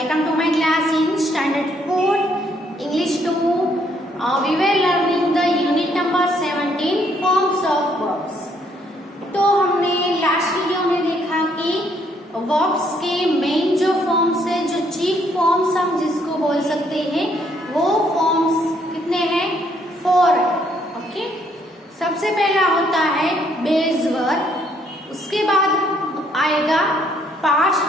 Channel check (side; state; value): both; normal; correlation 0.69